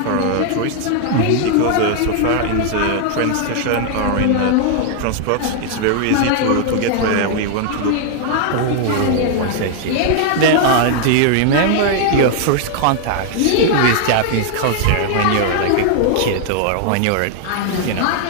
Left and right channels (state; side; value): different; both; correlation 0.00